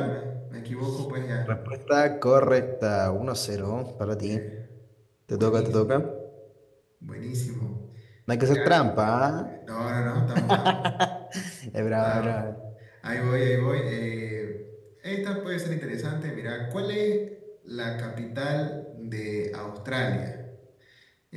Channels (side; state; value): both; identical; correlation 1.00